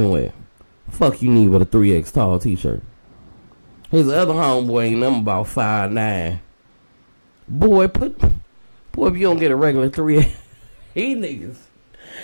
wet. Fuck you need with a 3X tall t-shirt. His other homeboy ain't nothing about 5'9". Boy, if you don't get a regular 3X, he niggas.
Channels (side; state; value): both; inverted; correlation -1.00